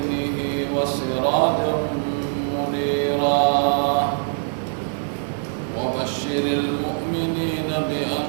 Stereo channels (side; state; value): left; silent; digital silence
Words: وسراجا منيرا وبشر المؤمنين